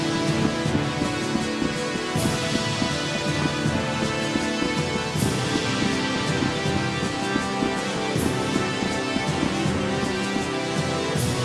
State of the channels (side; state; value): both; identical; correlation 1.00